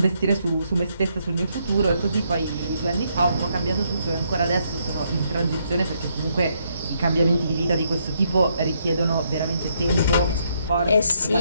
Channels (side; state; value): both; inverted; correlation -0.74